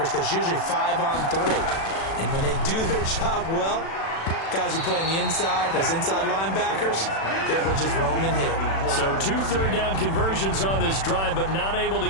because it's usually 5-on-3. And when they do their job well, Guys who play on the inside, those inside linebackers, they will just roam and hit. So 2 third-down conversions on this drive, but not able to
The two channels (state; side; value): late; right; 36 ms